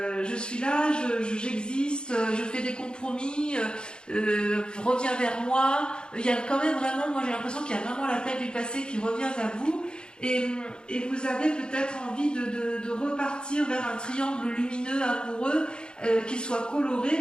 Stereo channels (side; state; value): right; late; 0.050 ms